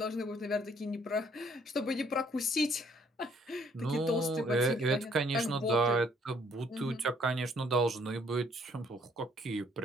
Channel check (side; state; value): both; normal; correlation 0.64